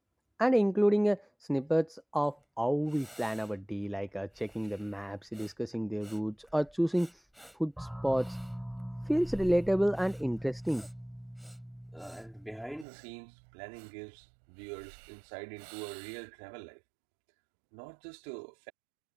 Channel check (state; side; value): drops out; left; at 12.9 s